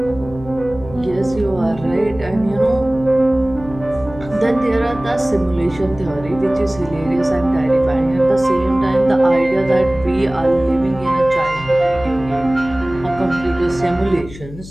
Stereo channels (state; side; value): noise; left; hum, 15 dB below the sound